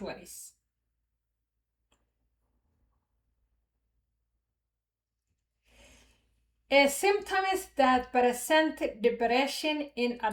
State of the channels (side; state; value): both; identical; correlation 1.00